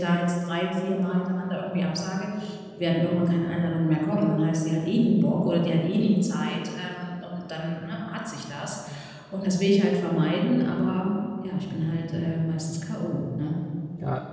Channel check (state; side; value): identical; both; correlation 1.00